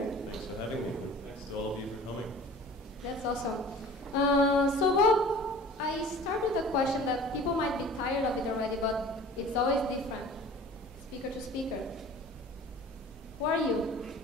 Thanks for having me. Thanks to all of you for coming. That's awesome. So Bob, I start with a question that people might be tired of it already, but it's always different, speaker to speaker. Who are you?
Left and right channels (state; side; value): normal; both; correlation 0.44